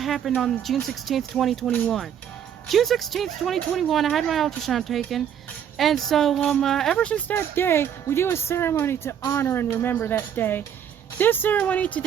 on June 16th, 2021. June 16th, 2021, I had my ultrasound taken, and so ever since that day, we do a ceremony to honor and remember that day. This ceremony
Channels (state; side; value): quieter; left; 9.0 dB